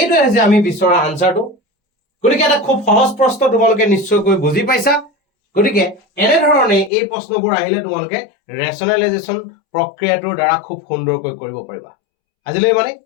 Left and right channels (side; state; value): right; drops out; at 6.9 s